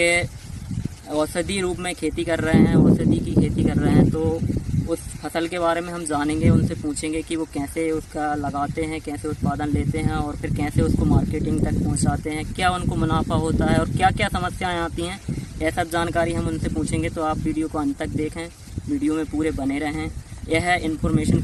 औषधि रूप में खेती कर रहे हैं, औषधि की खेती कर रहे हैं। तो उस फसल के बारे में हम जानेंगे, उनसे पूछेंगे कि वो कैसे उसका लगाते हैं, कैसे उत्पादन लेते हैं और फिर कैसे उसको मार्केटिंग तक पहुँचाते हैं, क्या उनको मुनाफा होता है और क्या क्या समस्याएँ आती हैं। यह सब जानकारी हम उनसे पूछेंगे, तो आप वीडियो को अंत तक देखें, वीडियो में पूरे बने रहें। यह इन्फॉर्मेशन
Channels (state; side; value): identical; both; correlation 1.00